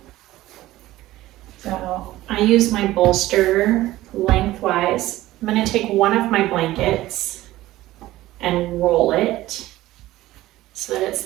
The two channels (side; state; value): left; quieter; 16.2 dB